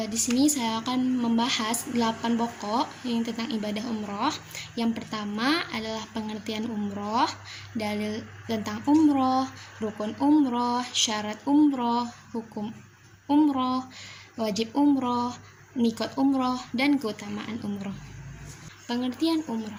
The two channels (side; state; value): both; identical; correlation 1.00